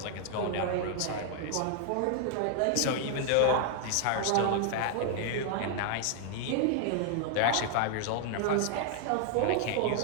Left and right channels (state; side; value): different; both; correlation 0.00